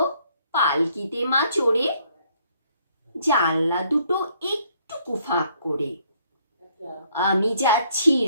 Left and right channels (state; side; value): inverted; both; correlation -0.66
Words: পালকিতে মা চড়ে, জানলা দুটো একটু ফাঁক করে। আমি যাচ্ছি